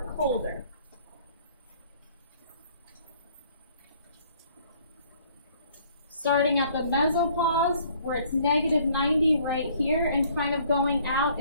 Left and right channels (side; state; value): both; inverted; correlation -0.59